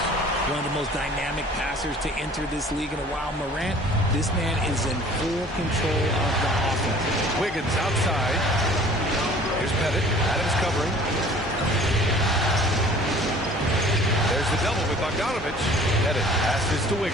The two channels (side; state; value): both; normal; correlation 0.50